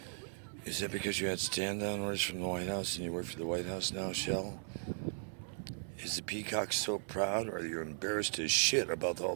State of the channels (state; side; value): silent; left; 53 dB below the other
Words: Is that because you had stand-down orders from the White House and you work for the White House now, Shell? Is the Peacock so proud, or are you embarrassed as shit about all